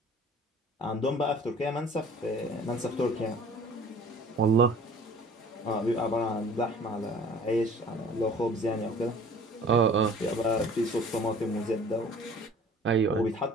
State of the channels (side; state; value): both; normal; correlation 0.48